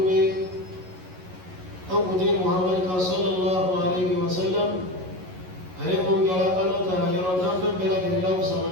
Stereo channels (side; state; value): left; late; 11 ms